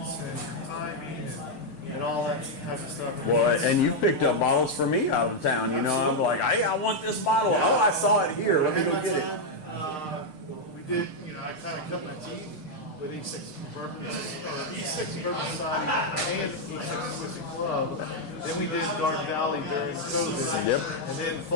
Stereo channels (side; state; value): right; late; 6.6 ms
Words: and timing and all that type of stuff. Well, and you picked up bottles for me out of town. I'm like, "Hey, I want this bottle. Yeah. Oh, I saw it here. Let me go get it." We did, I kind of cut my teeth with East Texas Bourbon Society and East Texas Whiskey Club. Then we did Garden Valley during COVID. Yep. And then